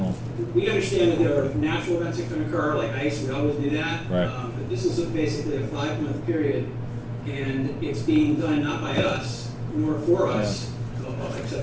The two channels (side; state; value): both; identical; correlation 1.00